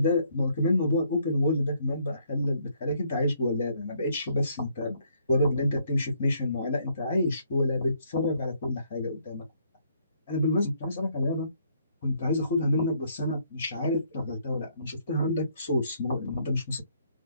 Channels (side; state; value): both; inverted; correlation -0.69